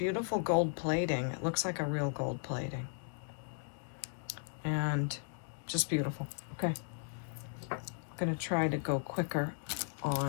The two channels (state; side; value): silent; right; digital silence